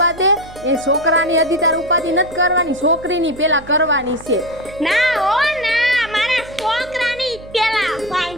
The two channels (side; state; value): right; noise; hum, 20 dB below the sound